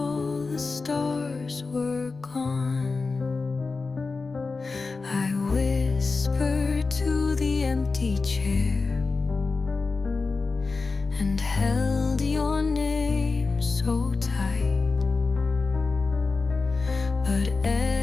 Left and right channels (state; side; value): quieter; right; 4.1 dB